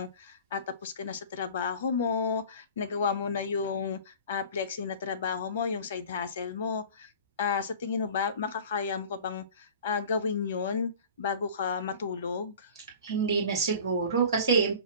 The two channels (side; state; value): both; inverted; correlation -0.42